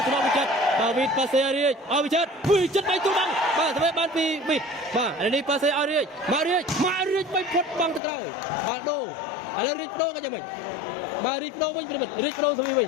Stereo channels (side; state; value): right; drops out; at 8.0 s